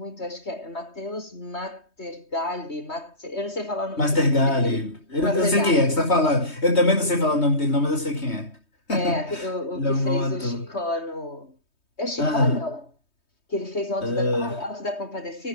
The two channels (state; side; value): late; right; 3.2 ms